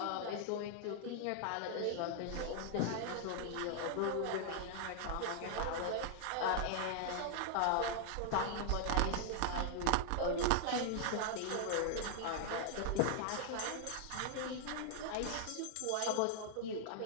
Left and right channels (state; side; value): different; both; correlation 0.00